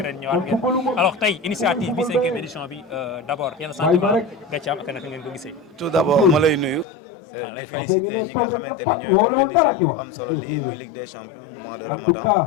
ren ñëwaat ngeen. Alors tey initiative bi 5e édition bi d'abord yenn sentiment nga ci am ak naka ngeen ko gisee. Tout d'abord ma lay nuyu. di féliciter ñi nga xamante ni ñooy organiser lu am solo lii muy Ligue des Champions mois de Ramadan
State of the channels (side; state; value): right; drops out; at 6.9 s